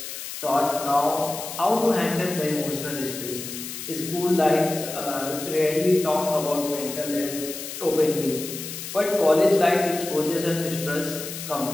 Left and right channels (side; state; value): left; noise; hiss, 9 dB below the sound